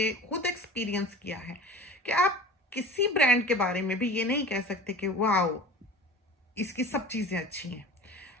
खुद एक्सपीरियंस किया है कि आप किसी ब्रांड के बारे में भी ये नहीं कह सकते कि वाओ इसकी सब चीज़ें अच्छी हैं।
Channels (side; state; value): both; normal; correlation 0.38